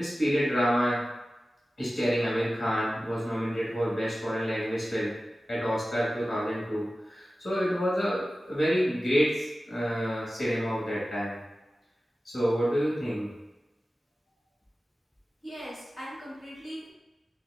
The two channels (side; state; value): both; normal; correlation 0.95